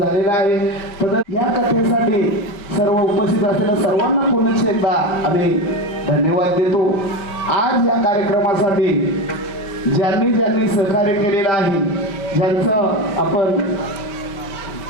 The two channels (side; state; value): right; late; 5.1 ms